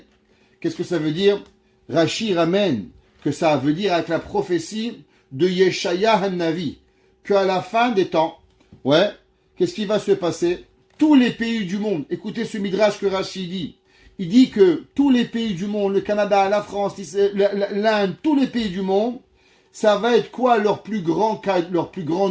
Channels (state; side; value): identical; both; correlation 1.00